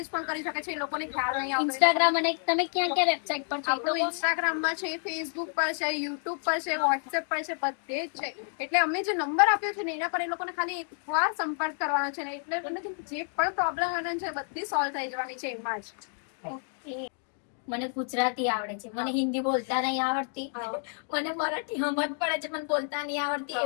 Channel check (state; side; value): silent; right; 58 dB below the other